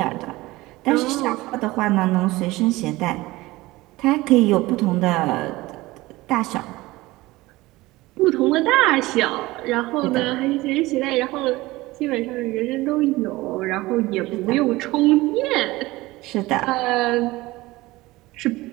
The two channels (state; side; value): quieter; left; 19.6 dB